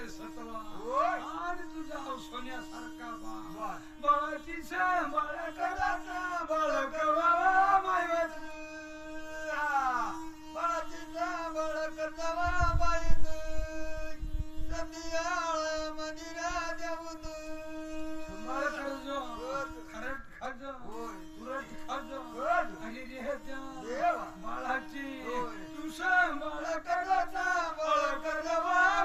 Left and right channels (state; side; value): identical; both; correlation 1.00